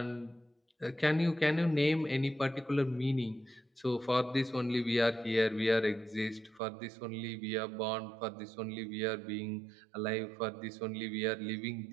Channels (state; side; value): drops out; left; at 6.6 s